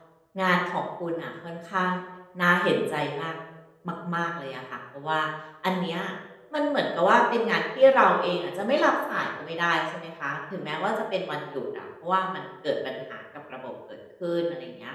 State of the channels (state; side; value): identical; both; correlation 1.00